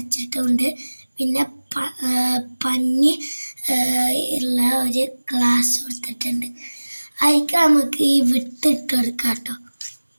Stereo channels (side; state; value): both; inverted; correlation -1.00